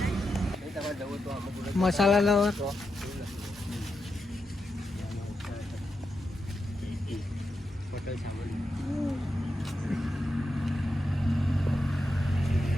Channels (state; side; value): normal; both; correlation 0.87